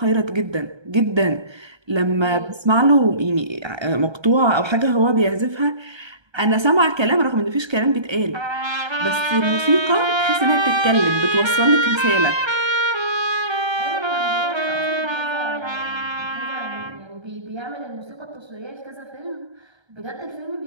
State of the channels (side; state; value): left; late; 1.3 ms